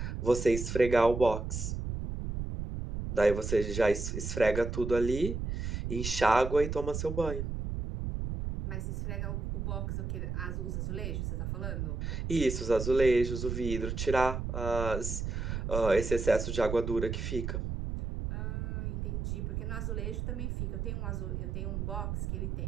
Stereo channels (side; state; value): right; noise; rumble, 3 dB below the sound